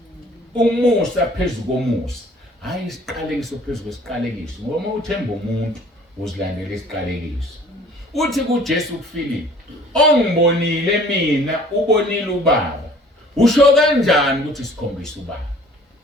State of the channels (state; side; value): normal; both; correlation 0.52